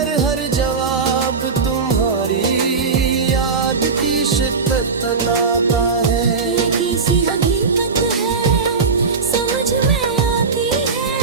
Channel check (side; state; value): left; quieter; 4.9 dB